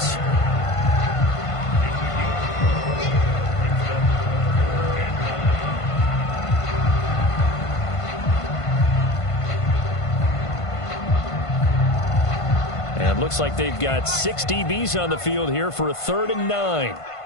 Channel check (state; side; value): late; right; 1.5 ms